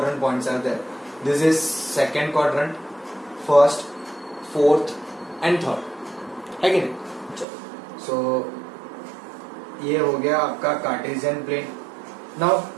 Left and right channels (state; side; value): drops out; left; at 7.5 s